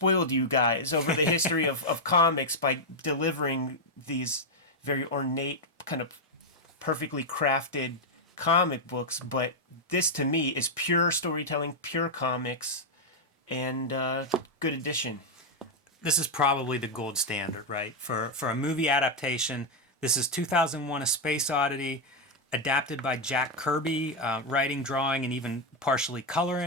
you guys over the history of comics by delivering these very ornate, kind of perfectly crafted comic books. But this, to me, is pure storytelling, pure comics, and good addition. This is probably the gold standard, right? For a movie adaptation, this is 2001: A Space Oddity, adapted by Jack Kirby, writing, drawing, and even partially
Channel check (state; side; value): normal; both; correlation 0.00